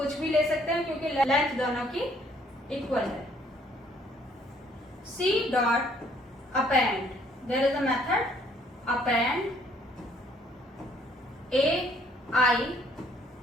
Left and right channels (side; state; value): both; normal; correlation 0.63